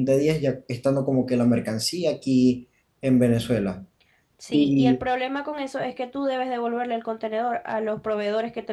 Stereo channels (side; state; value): both; identical; correlation 1.00